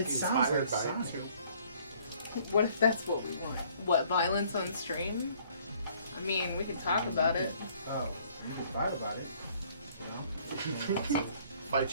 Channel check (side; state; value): both; inverted; correlation -0.60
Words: sounds Inspired like by Sonic. it, too. What if that's what we want? What, violence on stream? I mean, we can talk about it. Oh, you can fight about it. You know? Fight